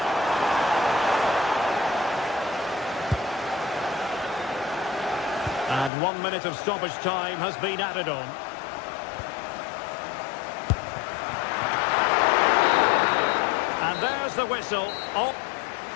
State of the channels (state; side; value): drops out; right; at 5.9 s